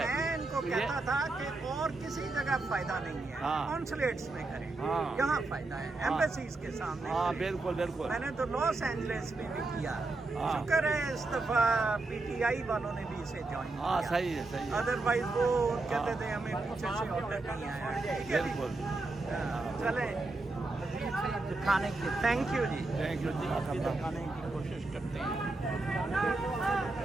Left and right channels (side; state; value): left; quieter; 3.2 dB